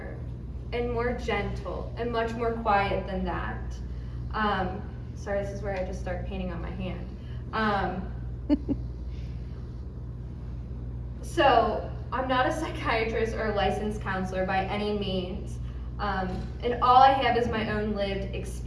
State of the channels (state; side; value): identical; both; correlation 1.00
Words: and more gentle and much more quiet than that. Sorry, this is where I just start painting on my hand. So, I'm not a psychiatrist or a licensed counselor by any means, and all I have is my own lived